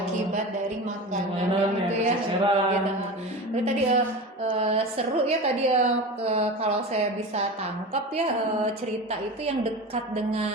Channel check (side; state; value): both; normal; correlation 0.29